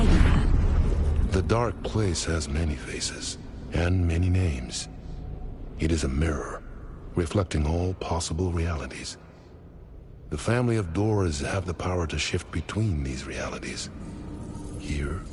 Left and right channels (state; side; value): identical; both; correlation 1.00